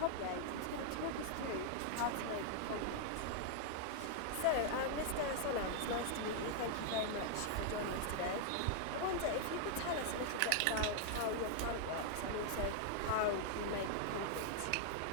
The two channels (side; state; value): both; different; correlation -0.01